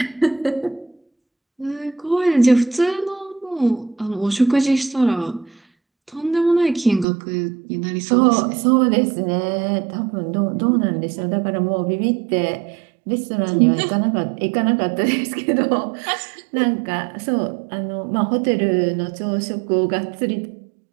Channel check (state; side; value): drops out; left; at 7.1 s